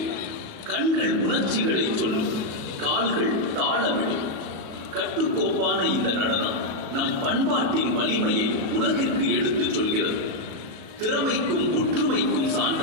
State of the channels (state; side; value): late; left; 37 ms